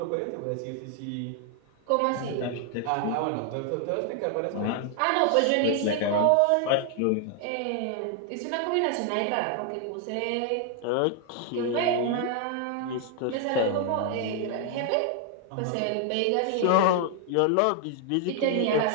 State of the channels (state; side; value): different; both; correlation 0.00